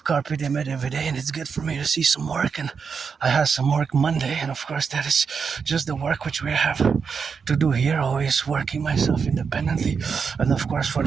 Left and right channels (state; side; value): quieter; left; 5.9 dB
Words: carpe diem every day, and it's good for me to see some work. And I have some work Monday, and of course that is just the work which we have to do here. Always working myself independently, and of course for